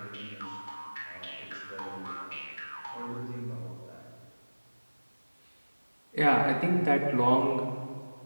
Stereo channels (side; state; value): both; inverted; correlation -1.00